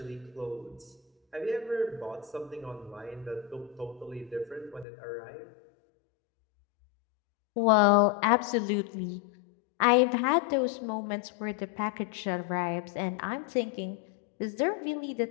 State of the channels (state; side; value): drops out; right; at 4.9 s